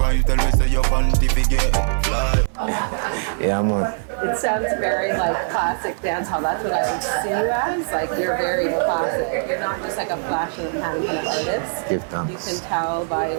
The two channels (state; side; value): silent; left; 61 dB below the other